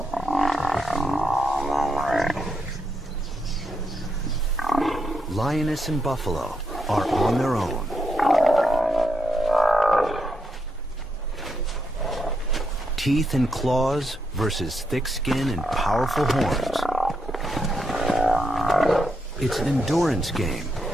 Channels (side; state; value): both; normal; correlation 0.81